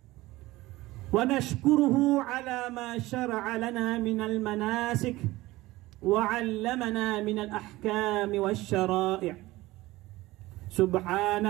ونشكره على ما شرع لنا من المناسك وعلمنا من الأحكام والشرائع.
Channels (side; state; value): left; quieter; 18.7 dB